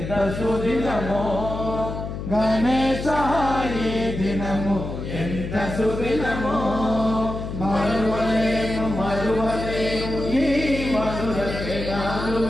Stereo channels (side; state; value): left; noise; hum, 7 dB below the sound